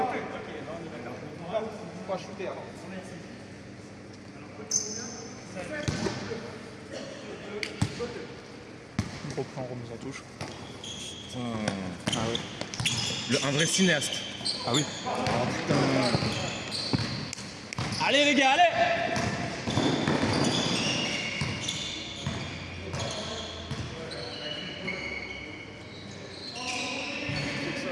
Pas shooter alors. On reprend, on remet sa touche. Ah ouais. Un vrai cinéaste. Ah oui. Allez les gars, allez.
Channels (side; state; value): both; identical; correlation 1.00